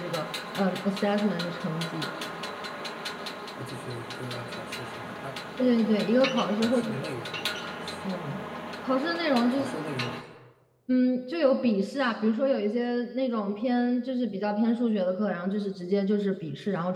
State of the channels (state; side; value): identical; both; correlation 1.00